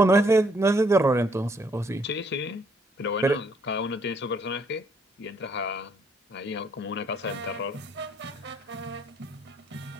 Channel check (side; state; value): both; normal; correlation 0.68